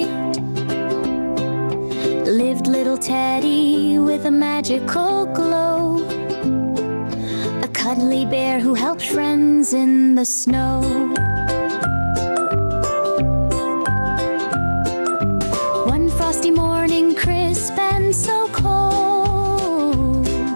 lived little Teddy with a magical glow, a cuddly bear who helped friends in the snow. One frosty morning, crisp and so cold,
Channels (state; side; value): inverted; both; correlation -1.00